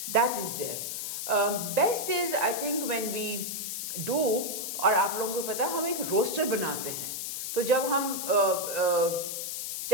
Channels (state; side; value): noise; left; hiss, 4 dB below the sound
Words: that is there. Best is I think when we do, और आप लोगों को पता है हम एक रोस्टर बनाते हैं, तो जब हम